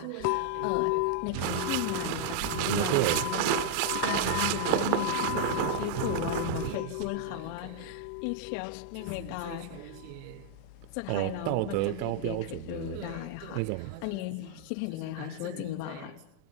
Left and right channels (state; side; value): different; both; correlation -0.01